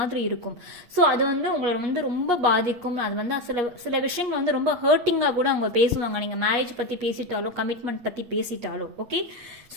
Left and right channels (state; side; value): late; left; 8.4 ms